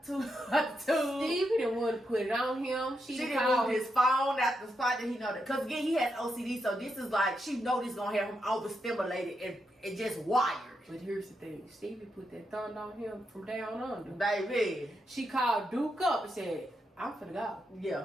the tube. Stevie didn't want to put it on him. She didn't move his phone out the spot that he know that. Because again, he has OCD, so this is like, she know this gonna have him overstimulated and just wired. But here's the thing, Stevie put that thumb on him from down under. Baby. She called Duke up and said, "I'm finna go."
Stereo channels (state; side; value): normal; both; correlation 0.83